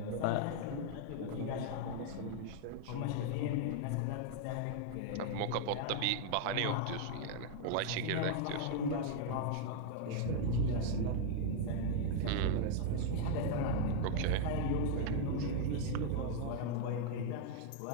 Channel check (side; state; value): both; different; correlation 0.00